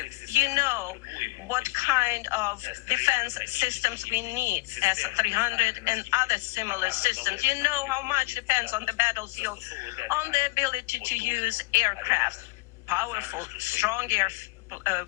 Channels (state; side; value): quieter; right; 23.8 dB